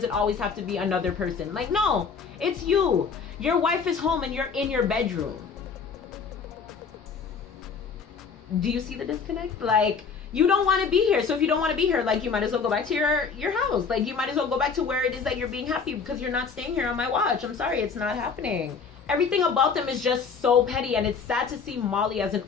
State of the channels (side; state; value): right; quieter; 5.6 dB